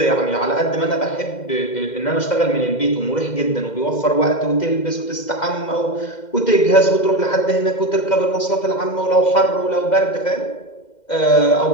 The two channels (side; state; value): right; late; 2.1 ms